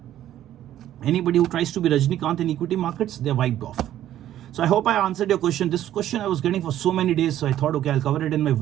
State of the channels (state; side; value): quieter; left; 12.2 dB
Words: Anybody who tries to be Rajnikant in equity markets, they're wiped off. So I hope I answered your question. This question I was getting for so many days, so I thought, okay, I'll cover it in my